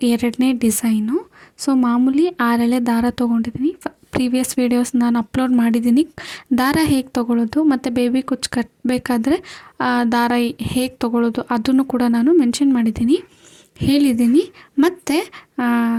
2ನೇ ಡಿಸೈನು. ಸೊ ಮಾಮೂಲಿ 6 ಎಳೆ ದಾರ ತೊಗೊಂಡಿದ್ದೀನಿ. ಪ್ರೀವಿಯಸ್ ವೀಡಿಯೋಸ್ ನಾನು ಅಪ್ಲೋಡ್ ಮಾಡಿದ್ದೀನಿ, ದಾರ ಹೇಗೆ ತೊಗೊಳ್ಳೋದು ಮತ್ತು ಬೇಬಿ ಕುಚ್ಚು ಕಟ್ಟಬೇಕಾದ್ರೆ ದಾರ ಹೇಗೆ ತೊಗೊಳ್ಳೋದು ಅದನ್ನು ಕೂಡ ನಾನು ಮೆನ್ಷನ್ ಮಾಡಿದ್ದೀನಿ, ಹೇಳಿದ್ದೀನಿ. ಮತ್ತು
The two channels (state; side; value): identical; both; correlation 1.00